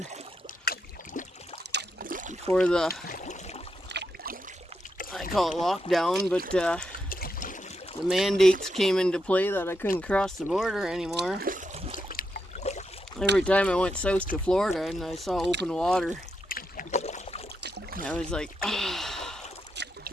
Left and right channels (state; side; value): normal; both; correlation 0.83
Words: Before the, I call it lockdown, but the mandates came into play that I couldn't cross the border anymore. Every time I went south to Florida and I saw open water, I was like, oh,